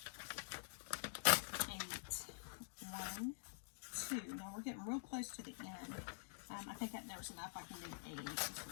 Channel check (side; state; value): right; silent; digital silence